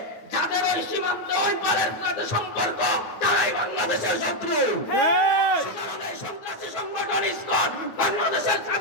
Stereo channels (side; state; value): right; late; 9.5 ms